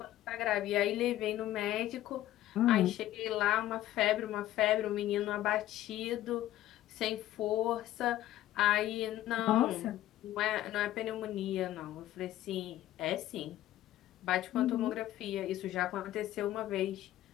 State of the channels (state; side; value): quieter; right; 14.0 dB